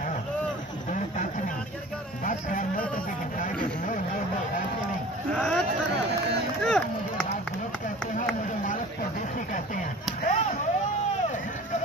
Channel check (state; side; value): normal; both; correlation 0.42